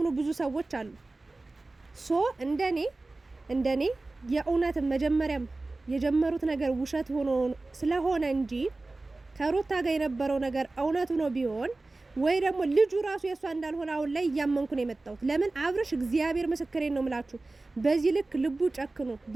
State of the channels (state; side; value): quieter; left; 3.2 dB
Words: ብዙ ሰዎች አሉ። እንደኔ የእውነት መጀመሪያም የጀመሩት ነገር ውሸት ሆኖ ስለሆነ እንጂ ከሩታ ጋር የነበረው ነገር እውነቱ ነው ቢሆን ወይ ደግሞ ልጁ ራሱ የሷ እንዳልሆነ አሁን ላይ እያመንኩ ነው የመጣሁት። ለምን አብርሽ እግዚአብሔር ምስክሬን ነው ምላችሁ በዚህ ልክ ልቡ ጨክኖ